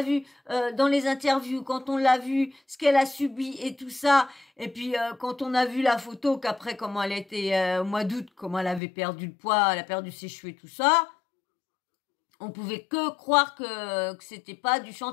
vu dans les interviews, quand on l'a vu ce qu'elle a subi et tout ça, et puis quand on a vu la photo qu'après comment elle était au mois d'août, comment elle avait perdu le poids, elle a perdu ses cheveux et tout ça, on pouvait que croire que c'était pas du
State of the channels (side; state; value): right; drops out; at 8.8 s